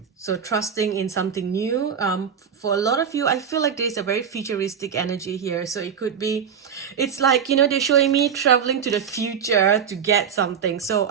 So trusting in something new. For a lot of you, I feel like there's a very futuristic energy here. So it could be, it's like, you know, they're showing me traveling to the future to get something. So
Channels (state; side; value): quieter; left; 7.5 dB